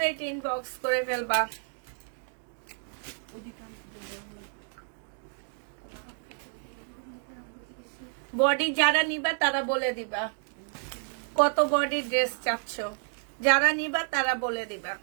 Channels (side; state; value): left; silent; 58 dB below the other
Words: ইনবক্স করে ফেলবা। বডি যারা নিবা তারা বলে দিবা কত বডি ড্রেস চাচ্ছ, যারা নিবা তারা বলে দিবা।